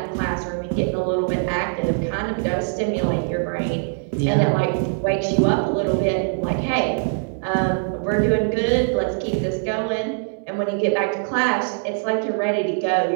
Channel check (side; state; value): left; silent; digital silence